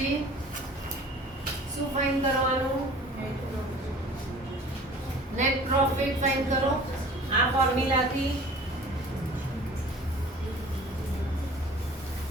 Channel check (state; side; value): normal; both; correlation 0.45